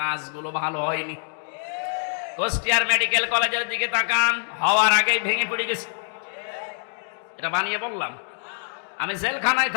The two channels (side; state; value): right; silent; digital silence